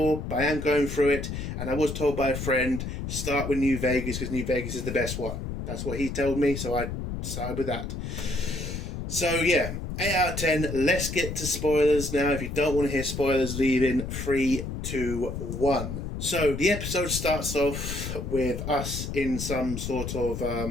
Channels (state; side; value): noise; left; rumble, 5 dB below the sound